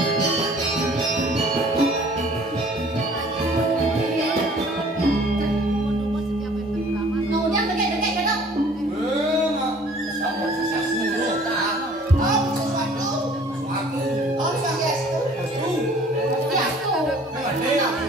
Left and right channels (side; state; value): both; normal; correlation 0.53